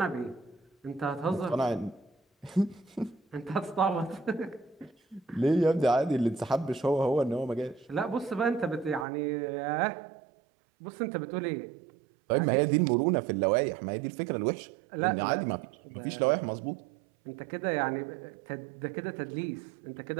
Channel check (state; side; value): drops out; left; at 9.1 s